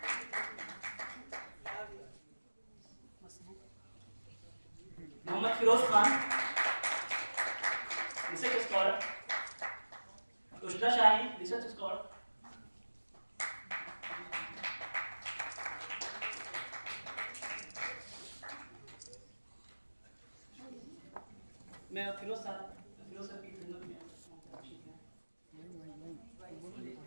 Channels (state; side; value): inverted; both; correlation -1.00